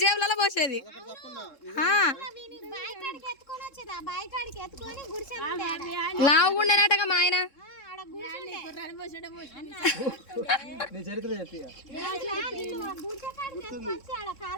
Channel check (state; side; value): late; right; 3.7 ms